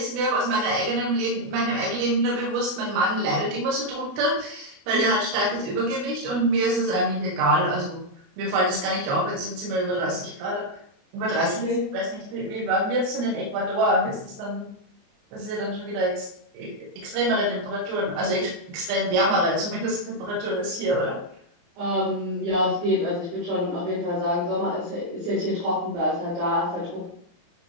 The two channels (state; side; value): late; left; 29 ms